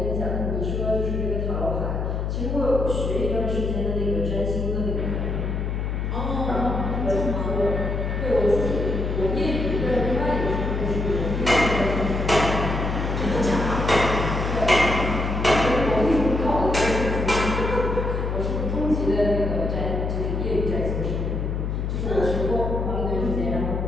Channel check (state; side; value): noise; left; hum, 1 dB below the sound